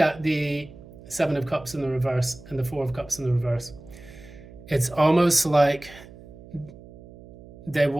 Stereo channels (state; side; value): noise; right; hum, 19 dB below the sound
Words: at the Seven of Cups in the reverse and the Four of Cups in the reverse, it's almost like they